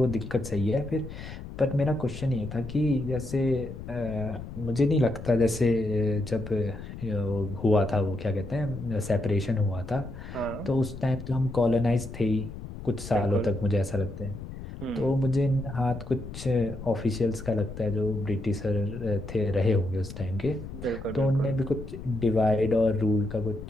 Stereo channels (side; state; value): left; noise; rumble, 11 dB below the sound